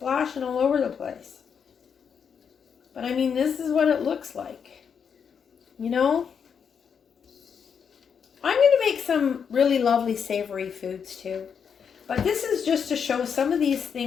all over the place. But I mean, this is what it looks like. You know? I'm going to make some really lovely savory foods too. But this is just to show some of these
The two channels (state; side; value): quieter; right; 6.9 dB